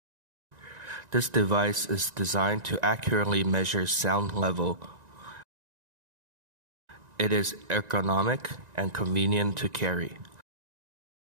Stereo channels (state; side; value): late; left; 1.9 ms